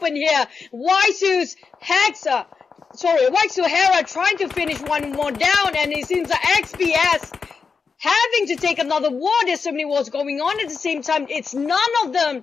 here. Waisu's Waisu Hera trying to finish one more down, and it seems like XPS having to take another war. There's so many wars going on at the same time. It's none of them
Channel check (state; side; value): quieter; right; 5.3 dB